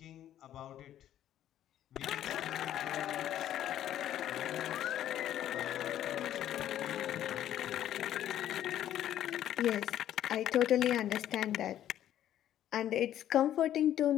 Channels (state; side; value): quieter; right; 11.6 dB